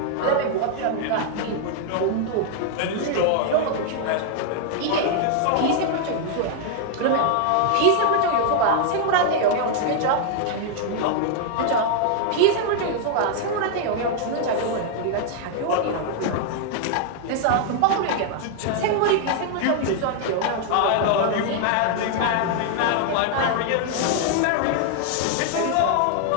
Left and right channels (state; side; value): different; both; correlation 0.00